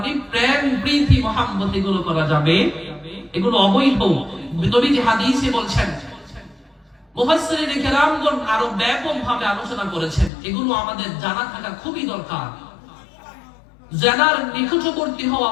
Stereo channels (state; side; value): drops out; right; at 10.3 s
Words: প্রেম, প্রীতি, মহব্বত এগুলো করা যাবে, এগুলো অবৈধ। নবীজি হাদিসে বলছেন, মুফাসসিরিন কেরামগণ আরো ব্যাপকভাবে আলোচনা করেছেন, এগুলো আমাদের জানা থাকা খুবই দরকার। জিনার নিকটবর্তী হওয়া